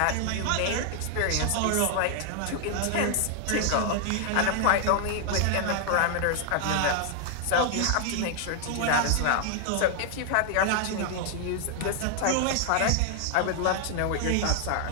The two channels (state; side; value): different; both; correlation 0.00